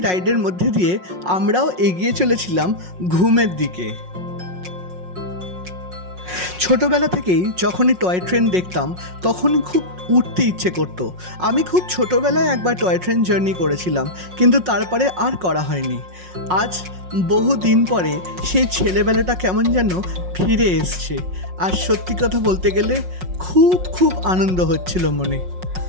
রাইডের মধ্যে দিয়ে আমরাও এগিয়ে চলেছিলাম ঘুমের দিকে। ছোটোবেলা থেকেই যখনই টয় ট্রেন দেখতাম তখনই খুব উঠতে ইচ্ছে করতো। আমি খুব ছোটোবেলায় একবার টয় ট্রেন জার্নি করেছিলাম, কিন্তু তারপরে আর করা হয়নি। আজ বহু দিন পরে সেই ছেলেবেলাটা কেমন যেন ফিরে এসছে, আর সত্যি কথা বলতে গেলে খুব আনন্দ হচ্ছিল মনে।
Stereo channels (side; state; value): left; late; 5.5 ms